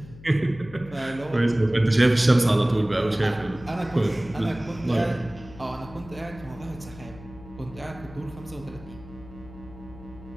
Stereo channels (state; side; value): noise; left; hum, 18 dB below the sound